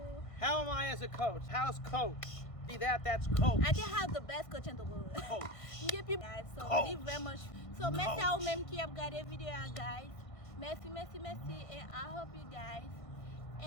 How am I as a coach? How's Coach? See that? That's Coach. I can have the best coach in the world. Coach. Give you guys. So Coach. leave very much. So merci à vous même qui avez regardé vidéo guys. Merci. And I hope you guys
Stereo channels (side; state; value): right; late; 1.6 ms